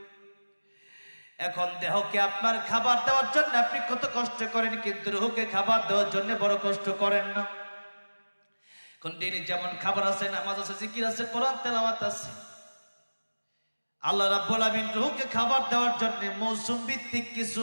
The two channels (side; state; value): both; inverted; correlation -1.00